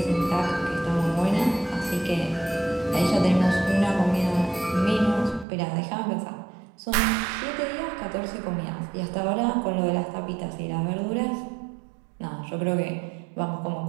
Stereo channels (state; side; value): drops out; left; at 5.5 s